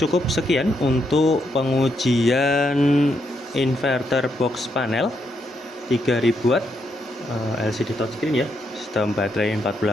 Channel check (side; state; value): both; normal; correlation 0.78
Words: sekian untuk pengujian inverter box panel 3000 watt LCD touchscreen ya, sistem baterai